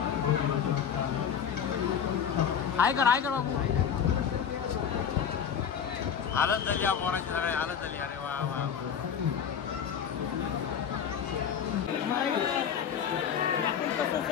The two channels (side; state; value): right; quieter; 7.9 dB